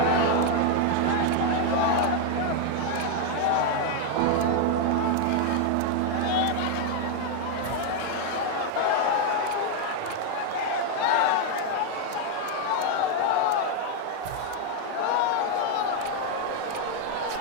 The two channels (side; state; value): both; different; correlation 0.01